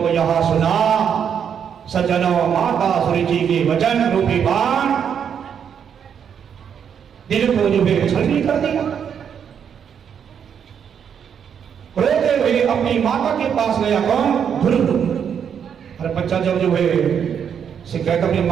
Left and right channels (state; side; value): quieter; left; 7.9 dB